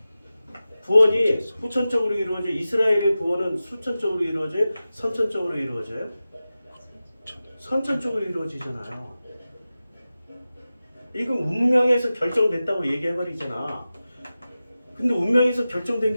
구원이 후천적으로 이루어져요? 이스라엘의 구원은 수천적으로 이루어져요? 선천적으로 이루어져요? 선천적으로 이루어지잖아요. 이건 운명에서 결정됐다고 얘기해버리잖아. 근데 운명에서 결정된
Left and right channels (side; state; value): both; inverted; correlation -0.95